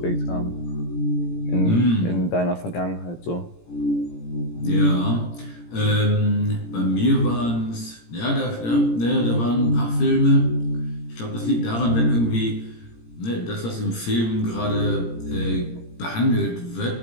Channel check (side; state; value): right; late; 17 ms